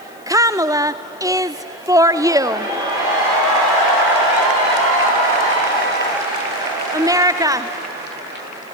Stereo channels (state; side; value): noise; left; hiss, 28 dB below the sound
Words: Kamala is for you. America,